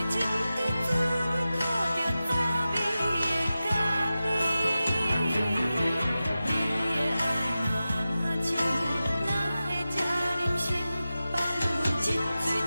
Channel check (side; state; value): both; inverted; correlation -0.94